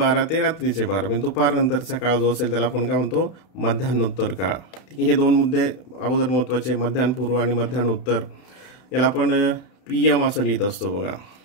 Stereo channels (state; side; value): late; right; 31 ms